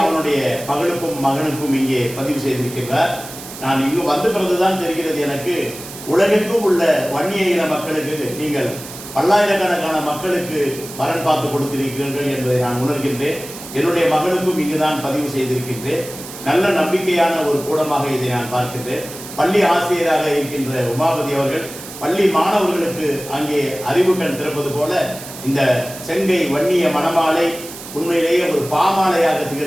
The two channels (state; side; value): noise; right; hiss, 13 dB below the sound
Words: அவனுடைய மகளுக்கும் மகனுக்கும் இங்கே பதிவு செய்திருக்கின்றார். நான் இங்கு வந்த பிறகுதான் தெரிகிறது எனக்கு, உலகெங்கும் உள்ள வன்னிய இன மக்களுக்கு நீங்கள் பல்லாயிரக்கணக்கான மக்களுக்கு வரன் பார்த்து கொடுத்திருக்கிறீர்கள் என்பதை நான் உணர்கின்றேன். என்னுடைய மகனுக்கும் இங்குதான் பதிவு செய்திருக்கின்றேன். நல்ல நம்பிக்கையான ஒரு கூடமாக இதை நான் பார்க்கின்றேன். பள்ளி ஆசிரியராக இருக்கின்ற உமாபதி அவர்கள் பள்ளி மாணவர்களுக்கு அங்கே அறிவு கண் திறப்பது போல இந்த செங்கை வன்னிய மணமாலை உண்மையிலேயே ஒரு பாமாலையாக